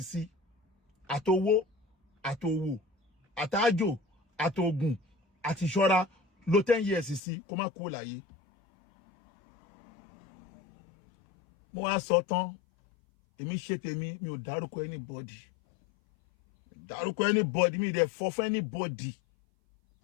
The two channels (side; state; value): right; drops out; at 7.2 s